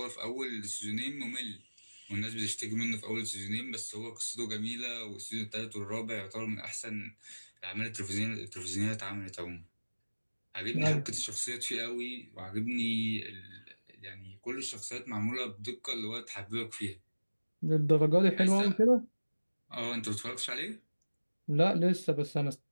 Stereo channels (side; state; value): both; inverted; correlation -1.00